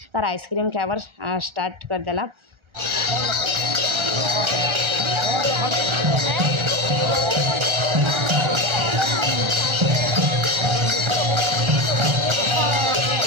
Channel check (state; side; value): late; left; 1.3 ms